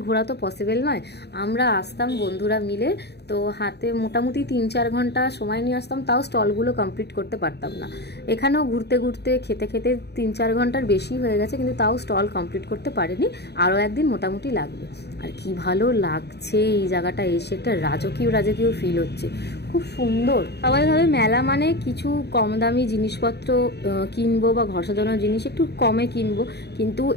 ঘোরা তো পসিবল নয়। আমরা আসতাম বন্ধুরা মিলে, তো হাতে মোটামুটি 3-4 ঘন্টা সময় নিয়ে আসতাম, তাও স্টলগুলো কমপ্লিট করতে পারতাম না। এখানেও ঘুরতে ঘুরতে খেতে খেতে 3-4 ঘন্টার বেশি হয়ে গেছে, কিন্তু তাও স্টল কমপ্লিট করতে পারিনি। আরও একদিন মোটামুটি লাগবে। আর কি ভালো লাগছে এই জায়গাটা এসে, একটা রাজকীয় ফিল হচ্ছে, খুব সুন্দর। সবাই ভাবে মেলা মানে কিছু কম দামি জিনিসপত্র কিনবো বা ঘর সাজানোর জিনিস একটু কমে কিনবো, কিন্তু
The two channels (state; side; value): late; right; 0.48 ms